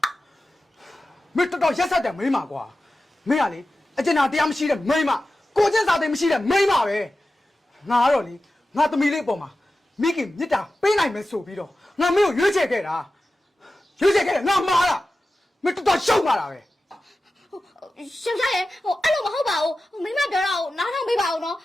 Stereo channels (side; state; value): both; normal; correlation 0.94